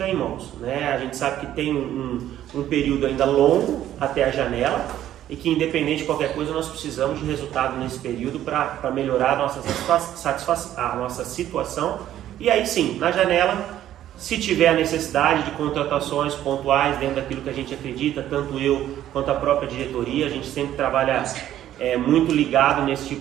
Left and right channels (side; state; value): left; quieter; 12.1 dB